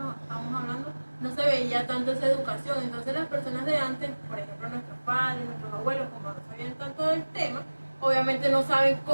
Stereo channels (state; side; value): inverted; both; correlation -1.00